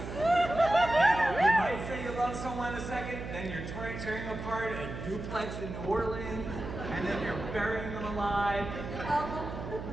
You might say you love someone a second, then you're tearing apart a duplex in New Orleans, and then you're burying them alive.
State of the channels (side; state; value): right; noise; hum, 8 dB below the sound